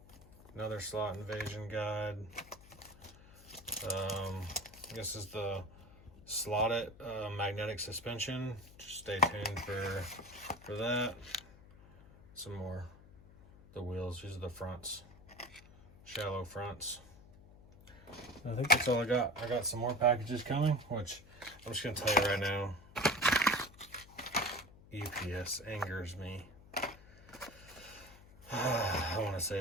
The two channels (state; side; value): noise; left; hum, 21 dB below the sound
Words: another slot invasion guide. This is the slotted magnetic suspension. Just stay tuned for that. Some more. The wheels, these are the fronts, shallow fronts. I think that's all I got. I got some more packages coming, which I'm just gonna tell you right now. UPS angers me. I want to